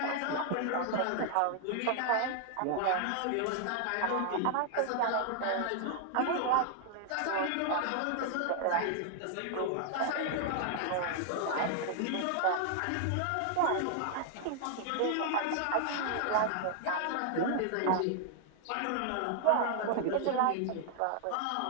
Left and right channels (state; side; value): different; both; correlation 0.00